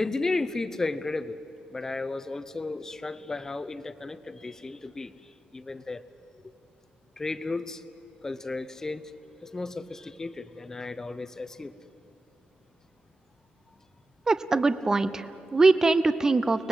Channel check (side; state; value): both; normal; correlation 0.93